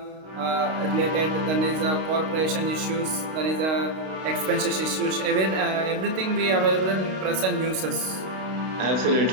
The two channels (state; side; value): late; left; 32 ms